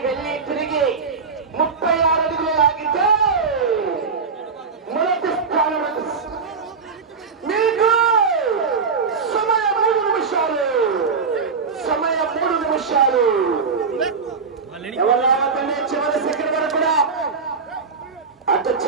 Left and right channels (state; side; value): quieter; left; 5.1 dB